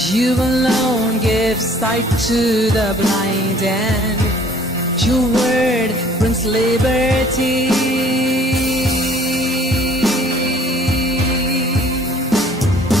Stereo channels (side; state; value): both; normal; correlation 0.55